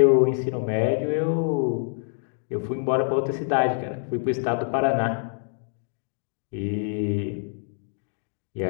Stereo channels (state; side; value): silent; right; digital silence